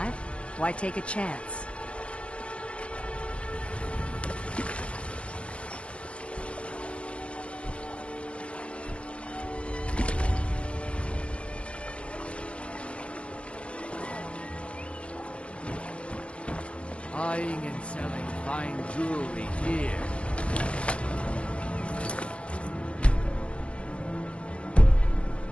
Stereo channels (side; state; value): right; late; 0.060 ms